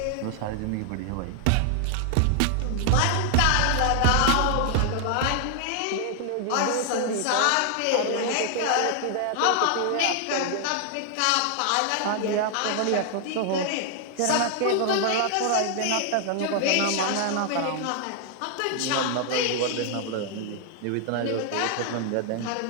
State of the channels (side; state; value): both; different; correlation 0.00